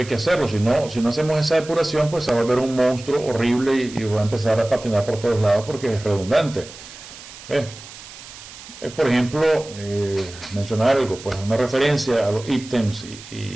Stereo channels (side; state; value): right; noise; hiss, 16 dB below the sound